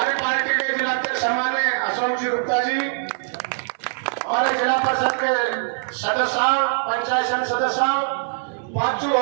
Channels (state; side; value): silent; left; digital silence